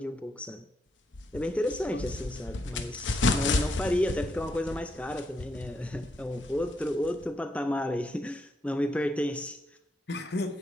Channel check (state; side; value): normal; both; correlation 0.79